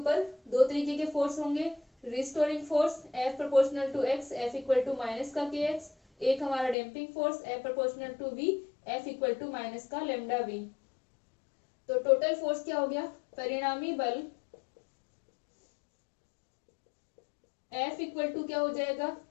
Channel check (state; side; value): drops out; right; at 6.8 s